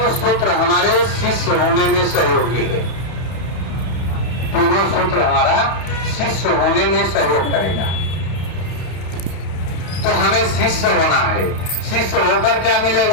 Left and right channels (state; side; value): late; right; 31 ms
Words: सूत्र हमारे शिष्य होने में सहयोगी है। तीनों सूत्र हमारा शिष्य होने में सहयोग करेगा। तो हमें शिष्य होना है। शिष्य होकर क्या